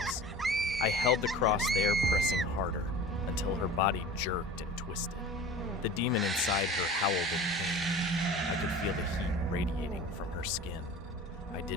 I held the cross there, pressing harder, until her body jerked and twisted. The demon inside her howled in pain. I could feel the heat radiating from her skin. I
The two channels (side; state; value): both; normal; correlation 0.39